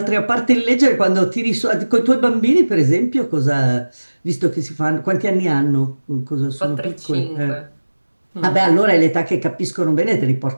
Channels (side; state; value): both; inverted; correlation -1.00